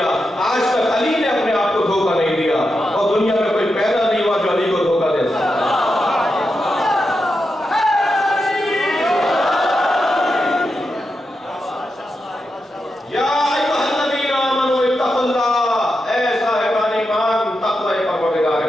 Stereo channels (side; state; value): both; normal; correlation 0.87